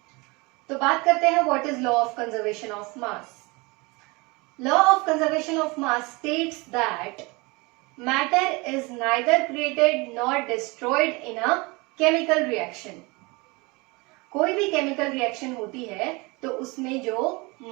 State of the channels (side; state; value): left; quieter; 26.1 dB